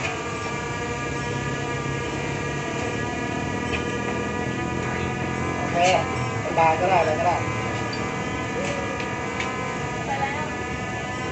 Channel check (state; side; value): identical; both; correlation 1.00